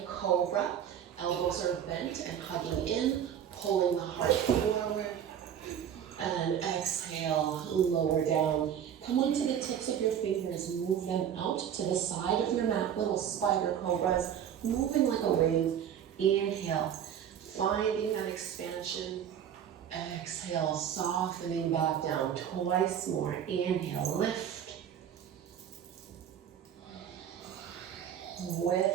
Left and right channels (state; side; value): quieter; left; 9.2 dB